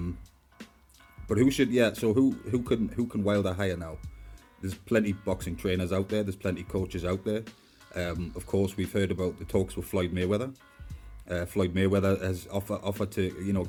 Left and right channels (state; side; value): identical; both; correlation 1.00